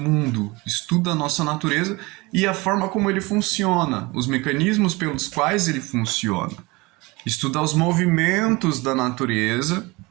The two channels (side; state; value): left; quieter; 23.8 dB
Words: estuda a nossa natureza e a forma como ele funciona, os mecanismos pelos quais ele funciona. Estuda os movimentos da natureza,